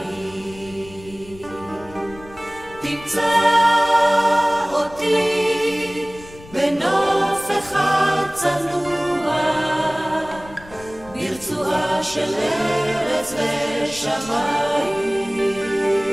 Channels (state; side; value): noise; left; rumble, 20 dB below the sound